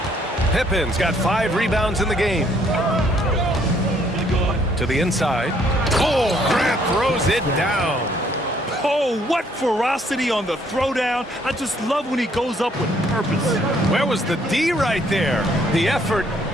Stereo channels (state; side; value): normal; both; correlation 0.66